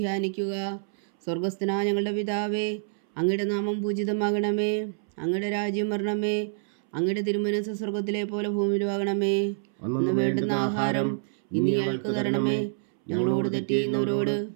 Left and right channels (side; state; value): left; silent; 60 dB below the other